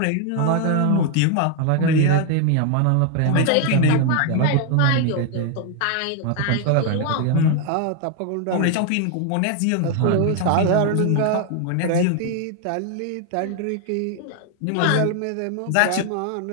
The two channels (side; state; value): both; different; correlation 0.00